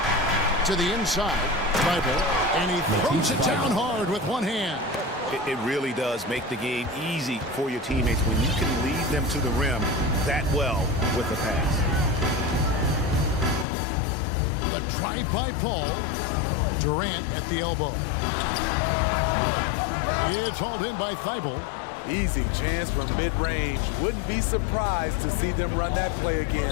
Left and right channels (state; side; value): drops out; right; at 13.7 s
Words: To the inside, Thibault, and he throws it down hard with one hand. It really does make the game easy for your teammates when you can lead them to the rim that well with a pass. The drive by Paul. Durant at the elbow. It's hauled in by Thibault. Easy chance from mid-range. Wouldn't be surprised to see them run that play